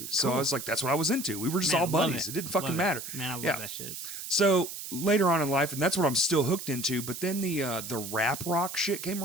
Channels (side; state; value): right; noise; hiss, 8 dB below the sound